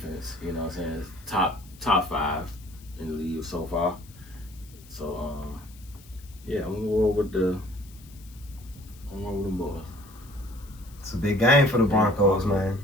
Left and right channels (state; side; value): noise; left; hiss, 24 dB below the sound